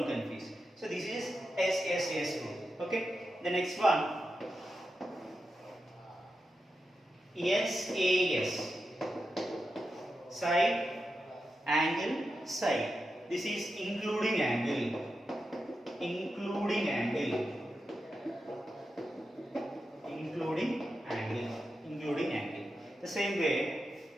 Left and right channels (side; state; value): both; normal; correlation 0.89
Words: confuse. So this is SSS rule. Okay. The next one, SAS, side, angle, side. This is including angle. Including angle. Including angle. Including angle. The same way,